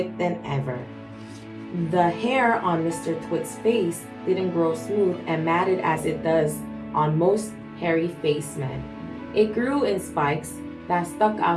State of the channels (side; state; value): both; identical; correlation 1.00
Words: than ever. The hair on Mr. Twit's face didn't grow smooth and matted as it does on most hairy-faced men. It grew in spikes that stuck